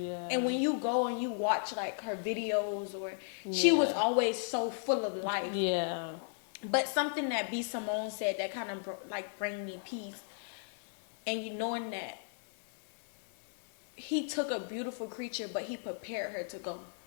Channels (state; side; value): silent; right; digital silence